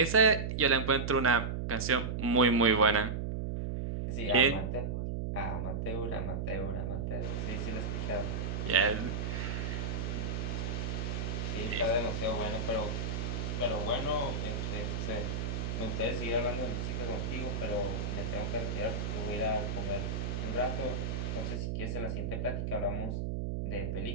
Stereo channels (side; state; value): right; noise; hum, 2 dB below the sound